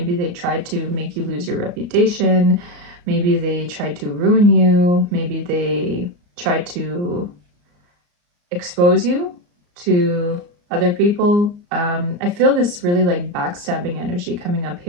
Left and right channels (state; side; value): late; left; 34 ms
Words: they tried to make you lose your reputation. Maybe they tried to ruin you. Maybe they tried to expose you to other people. I feel this really like backstabbing energy coming up